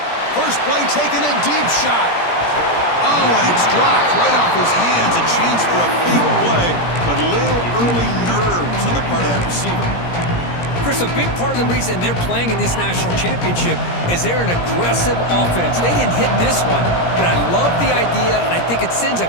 First play taken, a deep shot. Oh, and it's dropped right off his hands. A chance for a big play, but a little early nerves on the part of that receiver. Chris, a big part of the reason they're playing in this national championship is they're an aggressive offense. They didn't hit this one, but I love the idea, and I think it sends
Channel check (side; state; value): right; late; 17 ms